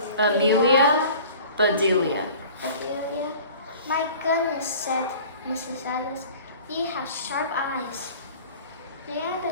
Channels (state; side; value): inverted; both; correlation -0.44